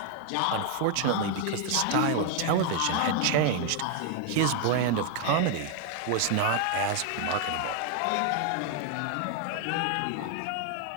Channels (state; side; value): different; both; correlation 0.01